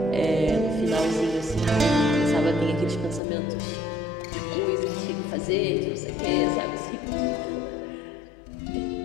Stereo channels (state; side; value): drops out; right; at 3.2 s